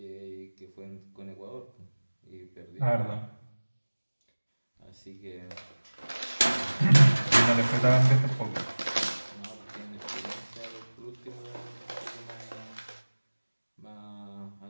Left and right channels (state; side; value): inverted; both; correlation -1.00